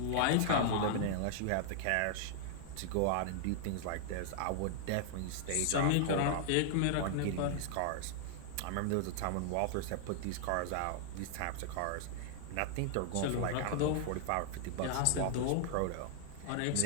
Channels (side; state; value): both; different; correlation -0.01